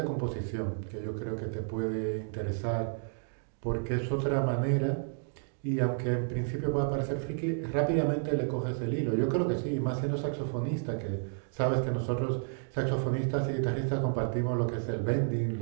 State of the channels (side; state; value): left; silent; digital silence